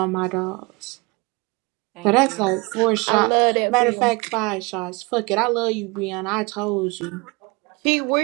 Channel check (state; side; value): quieter; left; 27.2 dB